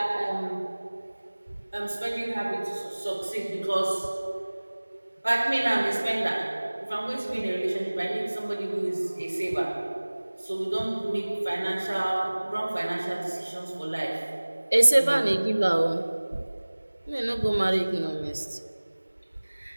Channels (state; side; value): inverted; both; correlation -1.00